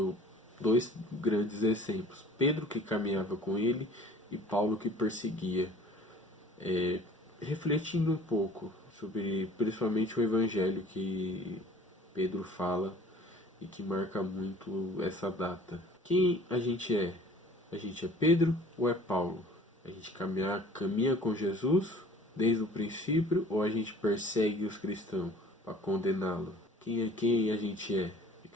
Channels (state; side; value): normal; both; correlation 0.49